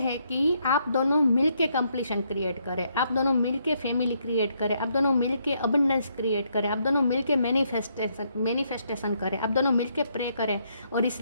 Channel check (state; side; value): inverted; both; correlation -0.74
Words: कि आप दोनों मिलके कंप्लीशन क्रिएट करें, आप दोनों मिलके फैमिली क्रिएट करें, आप दोनों मिलके अबंडेंस क्रिएट करें, आप दोनों मिलके मैनिफेस्टेशन करें, आप दोनों मिलके प्रे करें और इस